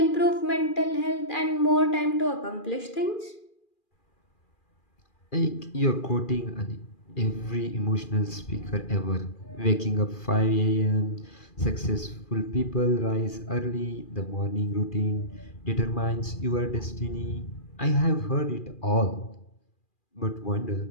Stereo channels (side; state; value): right; late; 2.4 ms